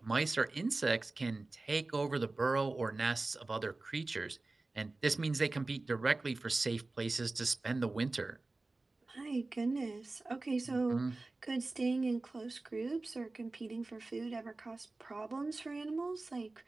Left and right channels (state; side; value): quieter; left; 3.3 dB